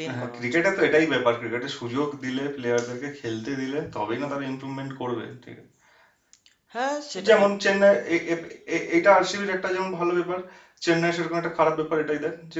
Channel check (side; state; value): both; identical; correlation 1.00